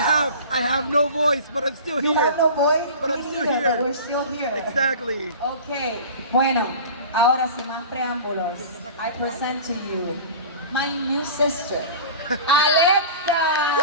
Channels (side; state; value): both; inverted; correlation -0.37